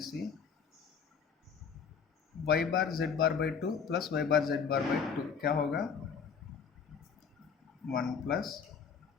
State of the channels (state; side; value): quieter; right; 6.4 dB